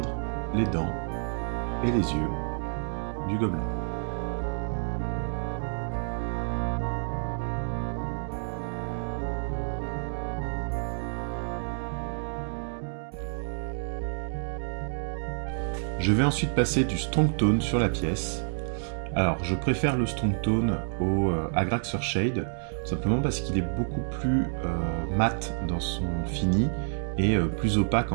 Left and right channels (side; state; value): left; silent; digital silence